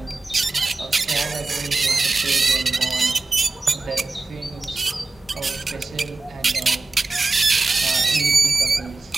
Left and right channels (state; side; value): quieter; left; 3.7 dB